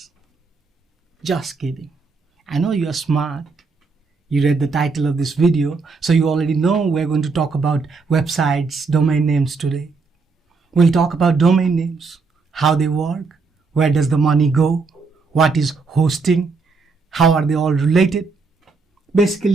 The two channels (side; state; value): left; quieter; 4.4 dB